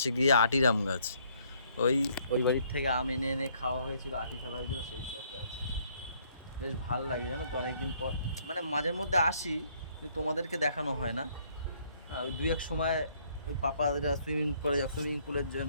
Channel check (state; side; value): inverted; both; correlation -0.66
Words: গিয়ে আটির আম গাছ। ওই ওই বাড়ির থেকে আম এনে এনে খাওয়া হয়েছিল, আটি ফেলা হয়েছিল, সেই সব গাছ। বেশ ভাল লাগে জানো তো, অনেকদিন পর মানে মাঝের মধ্যে আসি, কিন্তু তোমাদেরকে দেখানো হয় না। ওই দুই এক সময় ওই পাপারা সুইমিং পুলের